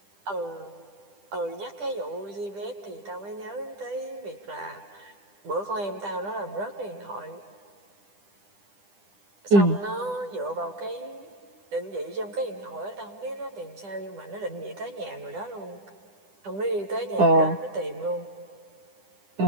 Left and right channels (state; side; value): late; left; 10 ms